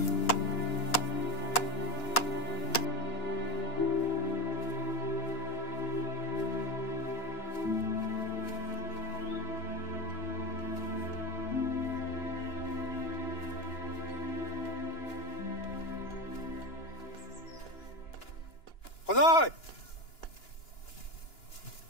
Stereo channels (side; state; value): right; late; 2.9 ms